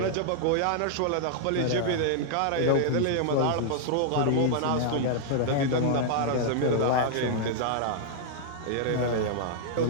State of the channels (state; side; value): different; both; correlation -0.01